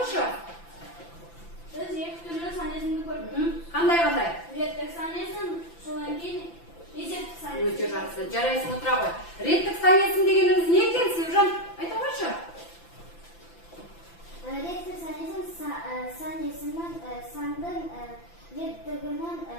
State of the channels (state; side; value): late; right; 5.9 ms